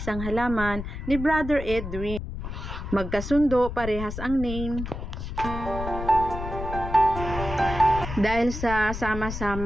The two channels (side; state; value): left; noise; rumble, 7 dB below the sound